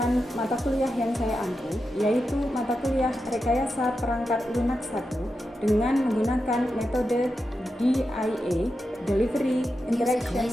mata kuliah yang saya ambil, yaitu mata kuliah Rekayasa Perangkat Lunak 1 dengan menggunakan metode DIA, Delivery, Interaction,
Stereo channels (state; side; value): normal; both; correlation 0.89